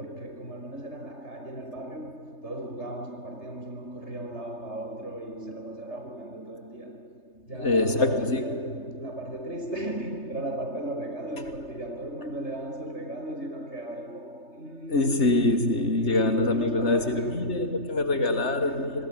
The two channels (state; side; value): late; right; 3.3 ms